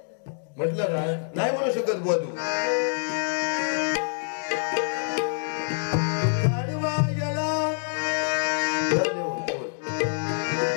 म्हटलं का नाही म्हणू शकत बुवा तू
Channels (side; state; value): right; silent; digital silence